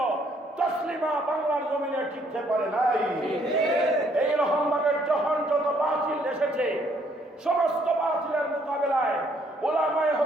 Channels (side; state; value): both; normal; correlation 0.66